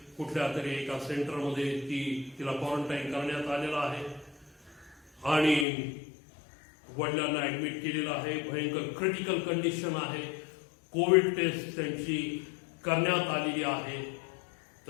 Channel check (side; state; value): right; drops out; at 5.7 s